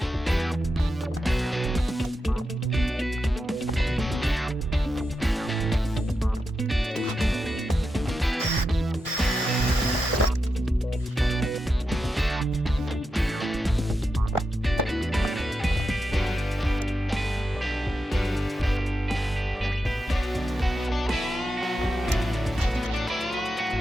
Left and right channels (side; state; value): both; normal; correlation 0.88